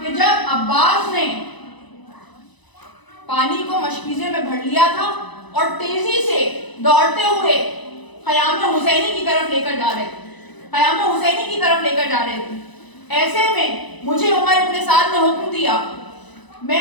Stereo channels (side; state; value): right; late; 1.0 ms